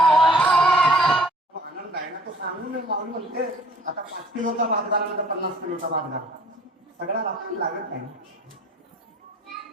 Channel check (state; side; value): normal; both; correlation 0.53